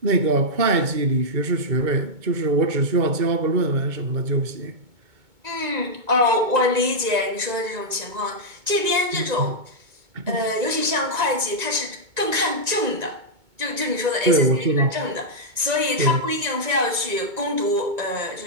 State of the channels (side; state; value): left; late; 2.2 ms